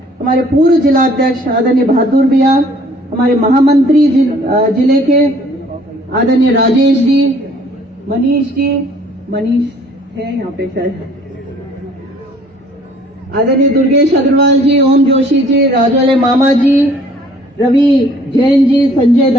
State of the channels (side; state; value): both; normal; correlation 0.57